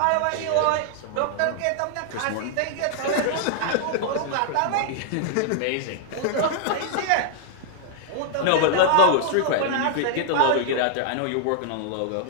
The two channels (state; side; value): different; both; correlation -0.01